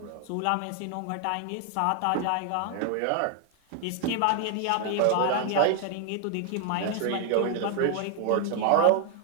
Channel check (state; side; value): different; both; correlation 0.00